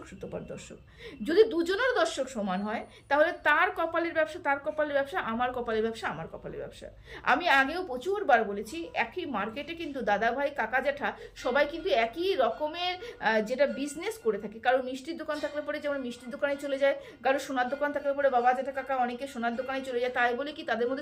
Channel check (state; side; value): identical; both; correlation 1.00